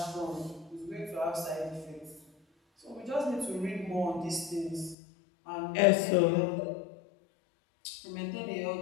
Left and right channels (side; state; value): right; drops out; at 5.0 s